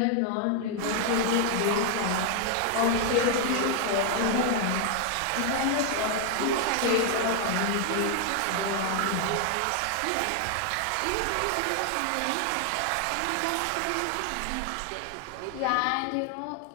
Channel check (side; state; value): both; different; correlation 0.00